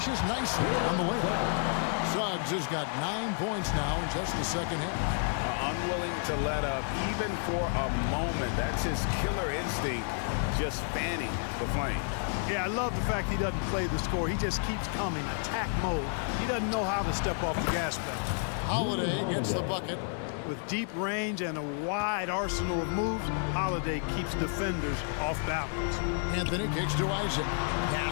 nicely on the layup. Suggs has got 9 points now in just the second half. Unwilling to let up even for a moment. That's his killer instinct, just fanning the flame. Yeah, I love the fact he doesn't play the score. He just keeps coming, attack mode. He doesn't know how to step off the gas pedal. Holiday gets the bucket. With deep range and a wide arsenal of moves, Holiday keeps defenders off balance. Anthony kicks to Isaac.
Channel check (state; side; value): silent; right; 57 dB below the other